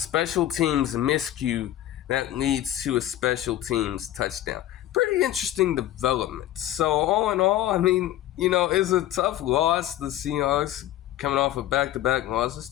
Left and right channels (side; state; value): right; quieter; 13.4 dB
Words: teams miscue that leads to a special teams touchdown. Pretty interesting development. So all in all, it's a tough loss. The Seahawks coming off of back-to-back losses,